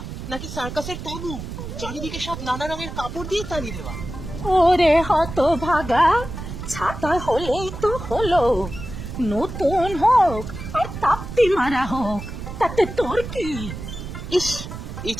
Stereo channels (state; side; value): noise; right; rumble, 9 dB below the sound